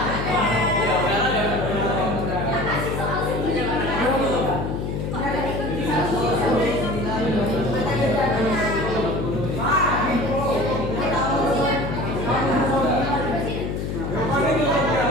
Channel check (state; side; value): noise; left; hum, 3 dB below the sound